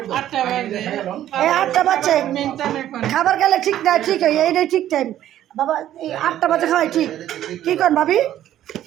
8টা বাজে এই 8টা বাজে মেনটেন এখন খাবার খেলে ঠিক না ঠিক হয় এইটাই ঠিক টাইম বাবা এই 8টা বাজে খাওয়াই ঠিক কি কর ভাবি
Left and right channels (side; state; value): left; quieter; 12.2 dB